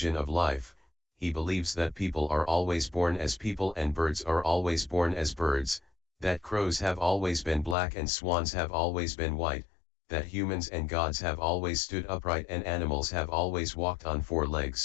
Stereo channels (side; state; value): right; drops out; at 7.8 s